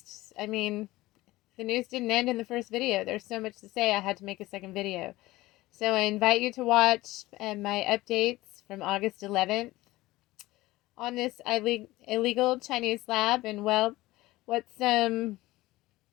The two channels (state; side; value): quieter; right; 18.5 dB